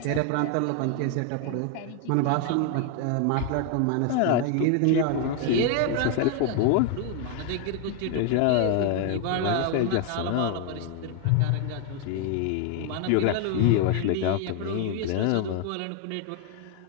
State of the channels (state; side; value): different; both; correlation 0.00